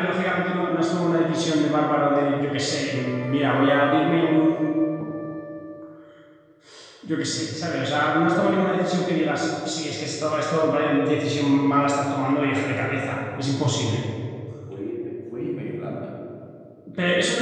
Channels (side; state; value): both; identical; correlation 1.00